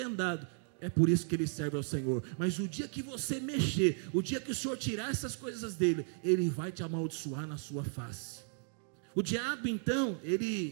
dado. É por isso que ele serve ao Senhor. Mas o dia que você mexer, o dia que o Senhor tirar essas coisas dele, ele vai te amaldiçoar na sua face. O diabo então,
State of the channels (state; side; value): silent; left; 54 dB below the other